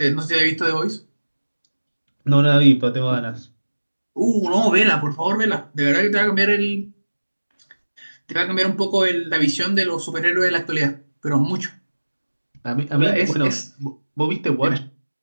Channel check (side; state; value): both; inverted; correlation -1.00